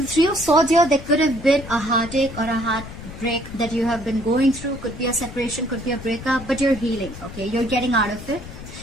the Three of Swords here, there could have been a heartache or a heartbreak that you have been going through. Could be a separation, could be a breakup, but you're healing, okay? You're getting out of it.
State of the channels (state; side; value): noise; left; rumble, 13 dB below the sound